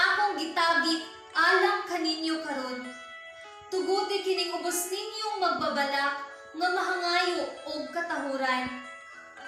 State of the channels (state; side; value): identical; both; correlation 1.00